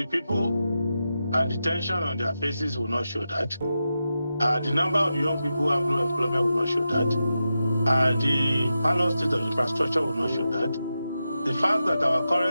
people and the tension on their faces will not show that. The number of young people who have no employment will not show that. The parallel state of infrastructure will not show that. The fact that our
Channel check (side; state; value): both; inverted; correlation -0.90